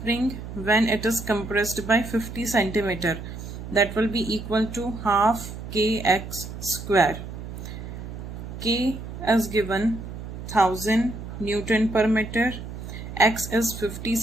when it is compressed by 50 centimeter. That will be equal to half kx square. K is given 1000 Newton per meter. X is 50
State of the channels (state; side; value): noise; right; hum, 10 dB below the sound